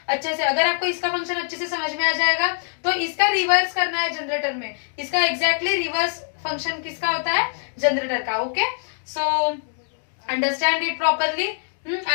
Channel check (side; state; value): right; silent; digital silence